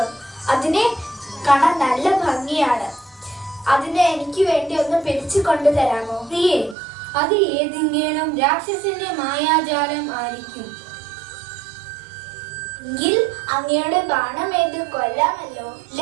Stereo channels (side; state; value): left; drops out; at 6.8 s